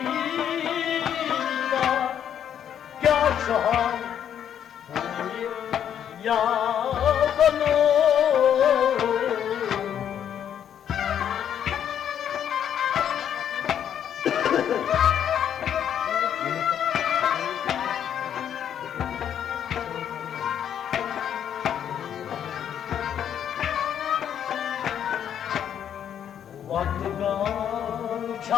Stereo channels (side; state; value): right; quieter; 9.3 dB